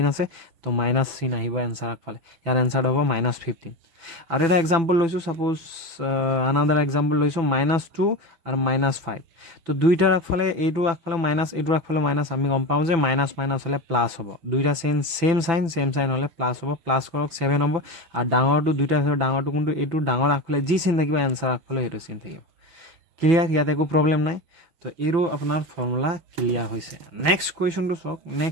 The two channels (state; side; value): late; left; 6.0 ms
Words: আছে তো মাইনাস চিন আহিব এনসাৰ আগফালে ইয়াৰ এনসাৰ হ'ব -15 আৰু এটা एग्जांपल লৈছো সাপোজ another example লৈছো -2 আৰু -5 তো দুইটাৰ আগফালে এইটো আগফালে মাইনাস এইটো আগফালে মাইনাস আমি গম পাও যে মাইনাস মাইনাস হলে প্লাস হ'ব দুইটা সেম সাইন হলে প্লাস হ'ব প্লাস কৰক 7 হ'ব আৰু ডাঙৰটো দুইটাৰ ভিতৰত ডাঙৰটো কোনটো এইটো ডাঙৰ আগফালে যি চিন থাকিব এনসাৰ আগফালে হেতু চিন থাকিব ক্লিয়াৰ ইয়াতে একো প্ৰবলেম নাই তো এৰো আপোনাৰ ফৰ্মুলা ক্লিয়াৰ হৈছে নেক্সট কোৱেশ্চনটো চক